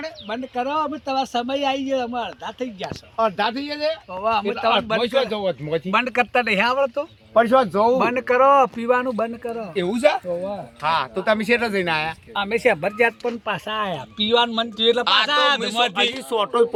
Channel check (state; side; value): identical; both; correlation 1.00